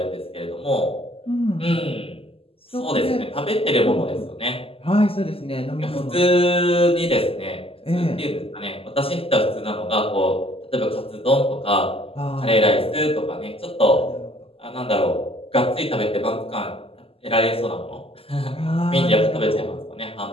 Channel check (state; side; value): late; right; 0.27 ms